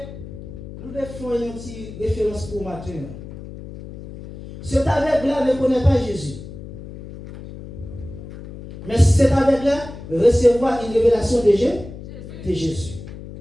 nous devons faire une petite référence pour matin. Cet aveugle-là ne connaît pas Jésus. Mais cet aveugle-là recevoir une révélation de Jésus.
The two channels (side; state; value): left; noise; hum, 13 dB below the sound